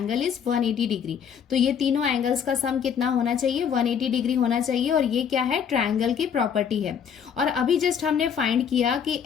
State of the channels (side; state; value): right; quieter; 7.6 dB